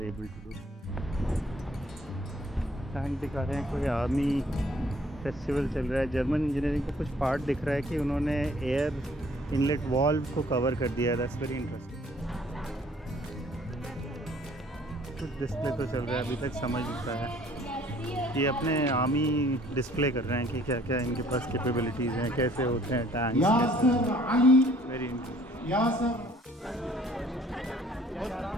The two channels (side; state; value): both; normal; correlation 0.58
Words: able to do. Tank दिखा रहे हैं, कोई आर्मी फेस्टिवल चल रहा है। जर्मन इंजीनियरिंग का कुछ पार्ट दिख रहा है कि उन्होंने एयर इनलेट वाल्व को कवर कर दिया है। That's very interesting. कुछ डिस्प्ले तो चल रहा है, अभी तक समझ नहीं पाया। ये अपने आर्मी डिस्प्ले कर रहे हैं कि क्या क्या इनके पास कैपेबिलिटीज़ हैं, कैसे होते हैं टैंक। वेरी इंटरेस्टिंग,